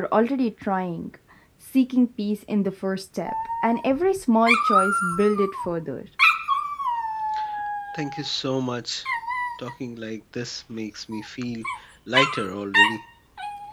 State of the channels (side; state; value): both; identical; correlation 1.00